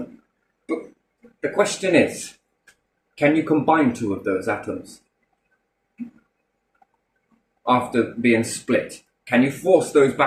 But the question is, can you combine 2 of those atoms after being split? Can you force those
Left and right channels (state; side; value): identical; both; correlation 1.00